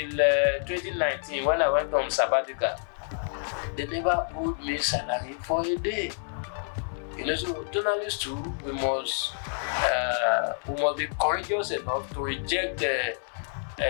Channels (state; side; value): silent; right; 59 dB below the other